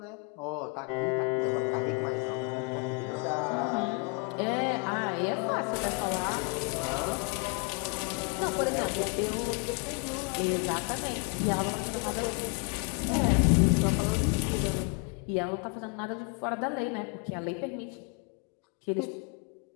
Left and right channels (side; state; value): right; quieter; 35.1 dB